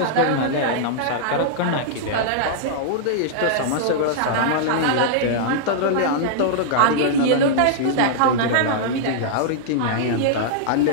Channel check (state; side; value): different; both; correlation -0.01